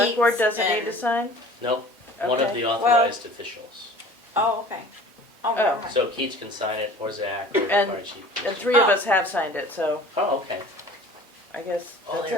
board Keats doesn't need and- to sign? No, one of Okay. the Well- authorized officials. Oh, okay. Oh, Oh. never mind. So Keats can sign it, or Zach, or the And- fire chief. And three of Oh. us have signed it, so Oh, okay. I guess Oh, that's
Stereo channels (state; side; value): normal; both; correlation 0.45